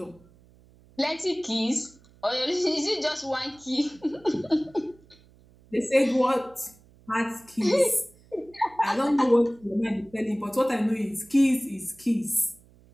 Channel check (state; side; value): noise; right; hum, 28 dB below the sound